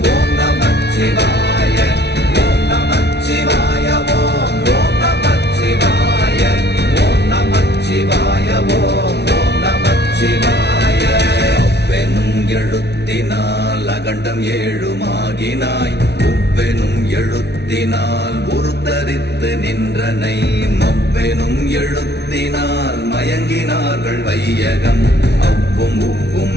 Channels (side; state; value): right; late; 0.49 ms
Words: ஓம் நமச்சிவாய ஓம் நமச்சிவாய ஓம் ஓம் நமச்சிவாய ஓம் நமச்சிவாய ஓம் ஓம் நமச்சிவாய. அவ்வெனும் எழுத்தினால் அகண்டம் ஏழுமாகினாய், உவ்வெனும் எழுத்தினால் உருத்தரித்து நின்றனை, மவ்வெனும் எழுத்தினால் மயங்கினார்கள் வையகம். அவ்வும் உவ்வும்